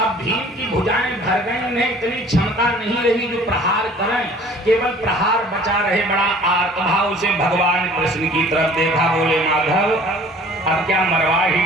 भीम की भुजाएं भर गई, उन्हें इतनी क्षमता नहीं रही जो प्रहार करें, केवल प्रहार बचा रहे। बड़ा आर्तभाव से भगवान कृष्ण की तरफ देखा, बोले माधव अब क्या मरवा ही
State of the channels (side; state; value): both; normal; correlation 0.50